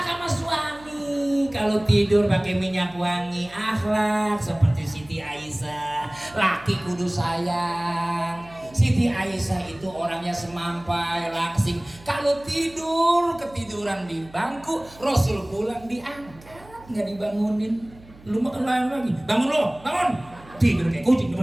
sama suami. Kalau tidur pakai minyak wangi, akhlak seperti Siti Aisyah. Laki kudu sayang. Siti Aisyah itu orangnya semampai, langsing. Kalau tidur ketiduran di bangku, Rasul pulang diangkat, nggak dibangunin. Lu makan lain lagi, bangun lo, bangun. Tidur kayak kucing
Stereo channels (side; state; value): right; noise; hum, 23 dB below the sound